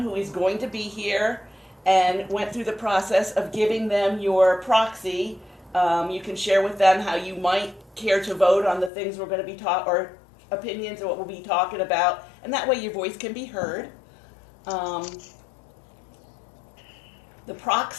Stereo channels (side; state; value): right; drops out; at 8.9 s